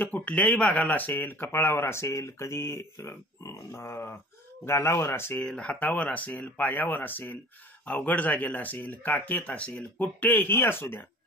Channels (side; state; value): both; normal; correlation 0.44